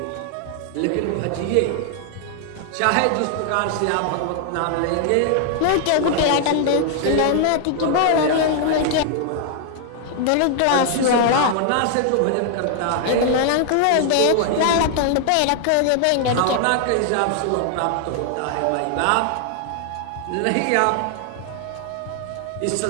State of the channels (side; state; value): both; different; correlation 0.00